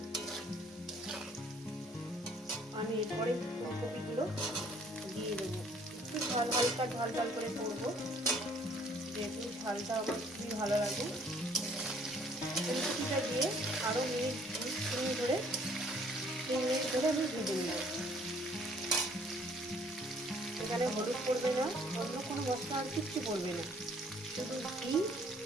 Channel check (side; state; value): both; normal; correlation 0.60